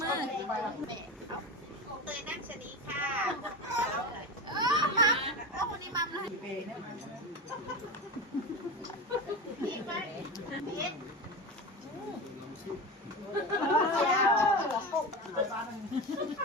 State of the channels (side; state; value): both; normal; correlation 0.25